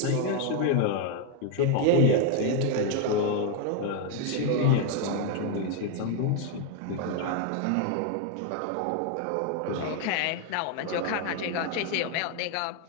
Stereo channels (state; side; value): different; both; correlation 0.01